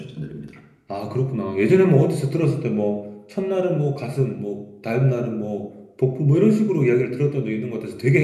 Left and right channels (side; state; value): both; identical; correlation 1.00